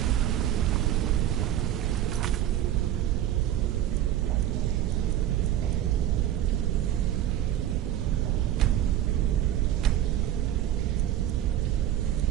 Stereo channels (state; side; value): quieter; left; 11.7 dB